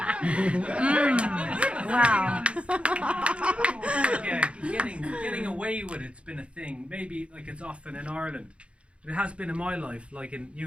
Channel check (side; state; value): left; late; 0.060 ms